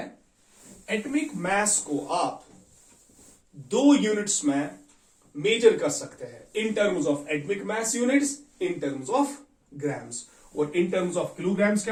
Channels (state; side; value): identical; both; correlation 1.00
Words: atomic mass को आप दो units में मेजर कर सकते हैं, in terms of atomic mass units, in terms of grams. और इन टर्म्स ऑफ किलोग्राम्स